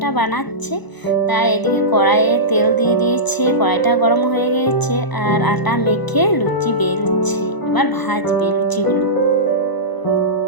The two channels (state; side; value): late; right; 1.0 ms